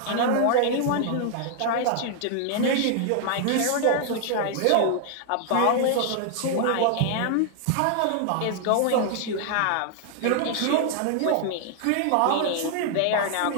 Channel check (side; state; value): both; different; correlation 0.00